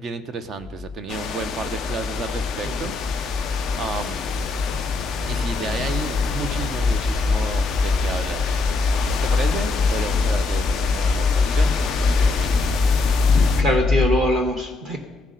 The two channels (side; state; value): right; quieter; 3.1 dB